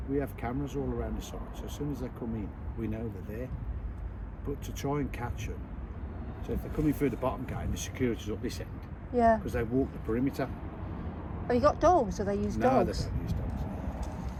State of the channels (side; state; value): both; identical; correlation 1.00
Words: we have cameras all around the site. So as soon as they come in, we know they're there. But to try and catch them, so if they're coming through the bottom gate and the security's up this end, Yeah. because they walk the perimeter. Have you got dogs? Do they use No, dogs? they don't use dogs.